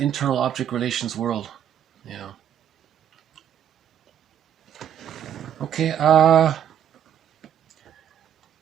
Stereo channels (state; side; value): quieter; left; 9.5 dB